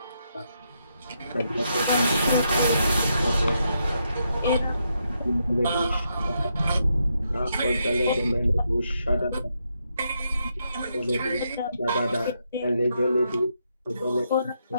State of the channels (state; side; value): inverted; both; correlation -0.80